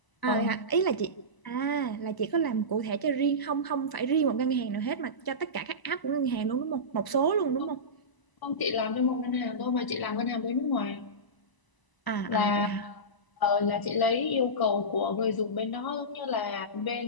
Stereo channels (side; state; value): right; late; 1.0 ms